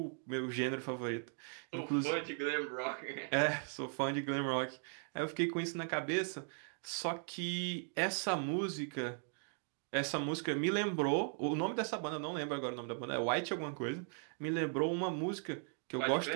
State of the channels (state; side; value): silent; left; 52 dB below the other